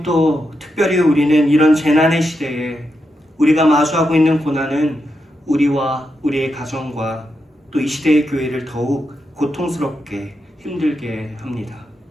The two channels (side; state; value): both; normal; correlation 0.85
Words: 또 특별히 우리는 이런 재난의 시대에 우리가 마주하고 있는 고난은 우리와 우리의 가정과 또 이 시대의 교회를 더욱 고통스럽게 힘들게 합니다.